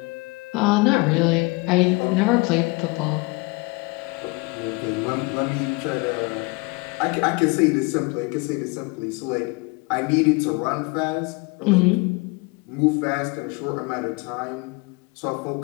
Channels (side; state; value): right; quieter; 27.1 dB